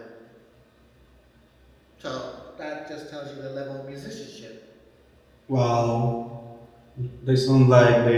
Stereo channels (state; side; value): identical; both; correlation 1.00